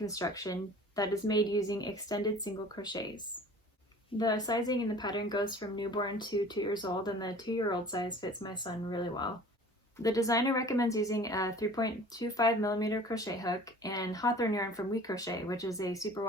that is made using extended single crochets. The sizing in the pattern goes from newborn to 2 years old, and the 2-year-old size fits my son really well. The designer recommends using a 3.25mm crochet hook and Hawthorne yarn from WeCrochet, which is a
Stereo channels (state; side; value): normal; both; correlation 0.46